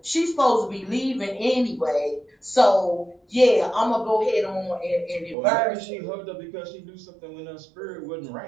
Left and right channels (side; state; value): left; drops out; at 5.4 s